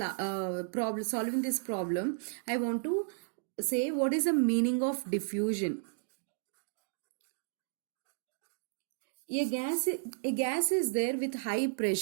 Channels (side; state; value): left; silent; digital silence